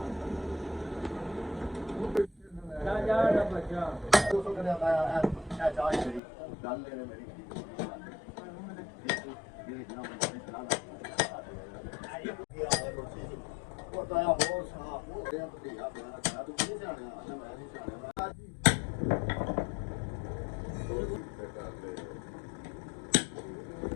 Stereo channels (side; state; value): right; drops out; at 6.2 s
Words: ਜਾ ਬੱਚਾ 200 ਕਰਿਆ ਆਇਆ ਇਹ ਚਾਹ ਮੇਰੀ ਗੱਲ ਲੈਣੇ ਮੇਰੀ ਇਹ ਜਨਾਬ ਨੇ ਚਲਾਨ ਉਹ ਤਾਂ ਹੋਰ ਸਾਫ ਹੋ ਗਿਆ ਤੇ ਆ ਬਣਾ ਤੂੰ ਨਹੀਂ ਜਾਣਿਆ ਮੈਂ ਨਹੀਂ ਜਾਣਿਆ